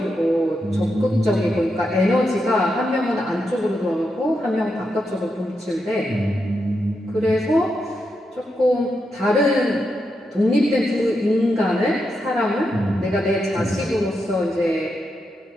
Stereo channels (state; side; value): normal; both; correlation 0.85